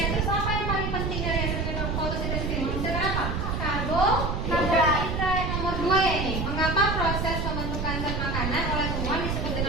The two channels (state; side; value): noise; right; rumble, 1 dB below the sound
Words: Terus apa yang paling penting dari hasil fotosintesis ini? Menghasilkan apa? Karbohidrat. Nomor 2 ya ini. Mengapa proses pembentukan zat makanan oleh tumbuhan disebut